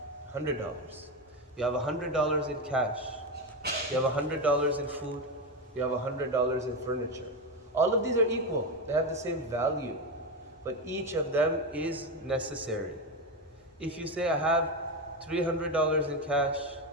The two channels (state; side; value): normal; both; correlation 0.14